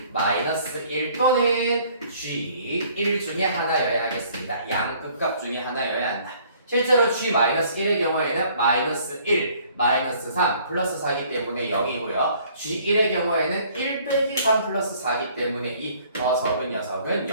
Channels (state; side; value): inverted; both; correlation -0.58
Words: 또는 G1 중에 하나여야 하겠습니다. 양 극값 중에 하나여야 한다. 실제로 G-1의 경우에는 마이너스 1, 마이너스 3, 플러스 4이기 때문에 0이고요. G1의 경우에는 1 빼기 3 플러스 4이기 때문에 이 더 적은 녀석은